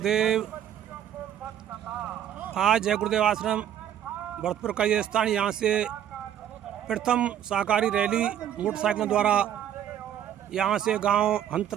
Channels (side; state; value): left; quieter; 10.3 dB